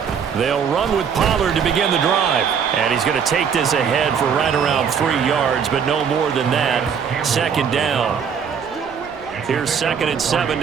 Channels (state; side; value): quieter; left; 7.0 dB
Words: They'll run with Pollard to begin the drive. And he's going to take this ahead for right around 3 yards, but no more than that. 2nd down. Here's 2nd and 7